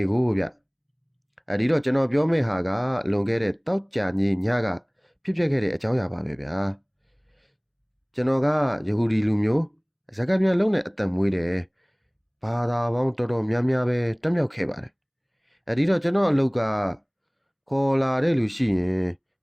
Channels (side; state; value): both; identical; correlation 1.00